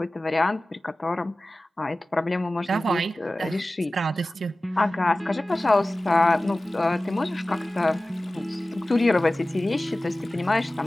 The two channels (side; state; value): both; normal; correlation 0.97